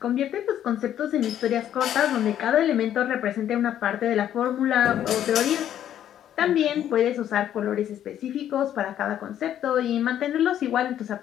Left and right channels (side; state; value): right; quieter; 10.8 dB